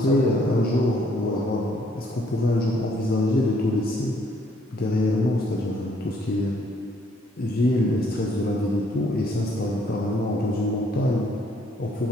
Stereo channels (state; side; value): normal; both; correlation 0.66